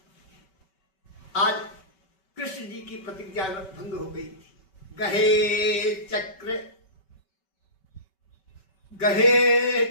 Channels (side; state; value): right; late; 5.2 ms